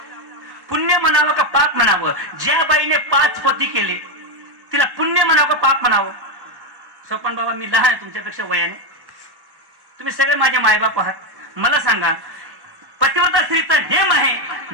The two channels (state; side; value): late; left; 1.1 ms